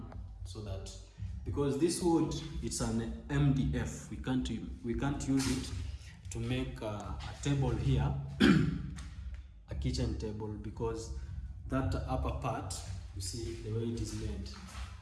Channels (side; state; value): both; identical; correlation 1.00